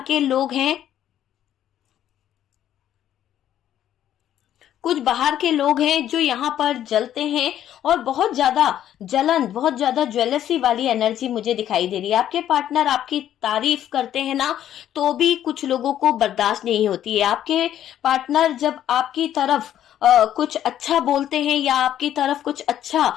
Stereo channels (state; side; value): quieter; right; 11.2 dB